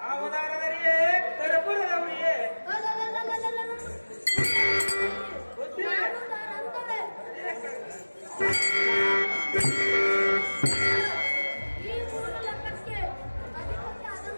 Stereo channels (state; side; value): inverted; both; correlation -1.00